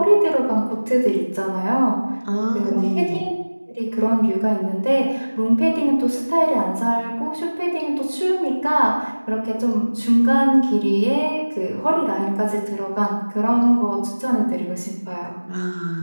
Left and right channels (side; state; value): both; inverted; correlation -1.00